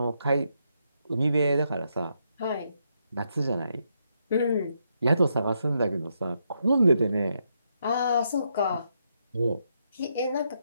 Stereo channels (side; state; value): both; inverted; correlation -0.79